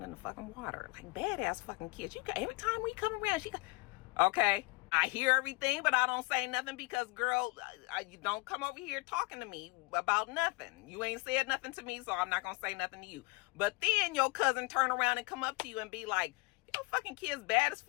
in the fucking water. Like badass fucking kids. Every time we come around, okay. I hear everything, but I don't say nothing because, girl, you don't come over here talking to me about nothing. You ain't said nothing to me, so I'm not going to say nothing to you. But then your cousin turn around and come up to you and be like, your fucking kid's bad as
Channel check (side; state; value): right; quieter; 25.9 dB